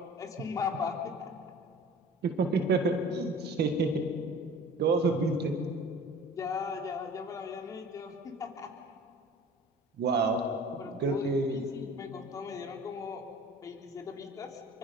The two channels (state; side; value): normal; both; correlation 0.44